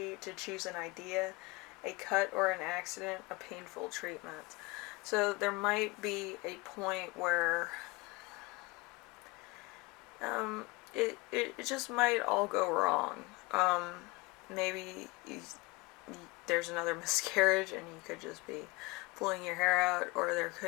to choose an idea, a cut or an accident, a painful treatment. So there might be a point where it just might all go wrong. Um, maybe there's another miscarriage and you could just be pulling your hair out, or there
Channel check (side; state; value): right; quieter; 24.0 dB